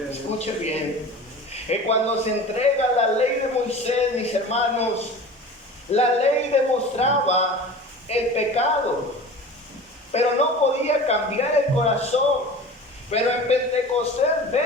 Escuche bien, que cuando se entrega la ley de Moisés, mis hermanos, la ley demostraba el pecado, pero no podía cambiar el corazón. Pero en Pentecostés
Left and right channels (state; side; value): normal; both; correlation 0.37